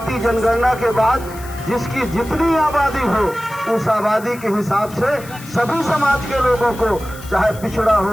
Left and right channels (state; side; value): noise; left; hiss, 18 dB below the sound